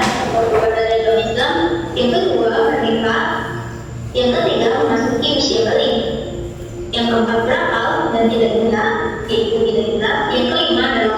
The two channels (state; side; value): identical; both; correlation 1.00